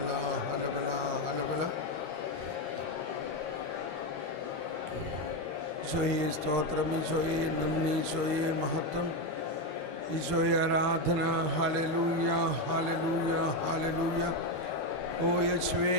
ഈശോയെ സ്തോത്രം, ഈശോയെ നന്ദി, ഈശോയെ മഹത്വം, ഈശോയെ ആരാധന. Hallelujah, hallelujah, hallelujah. ഓ യേശുവേ,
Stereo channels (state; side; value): late; left; 13 ms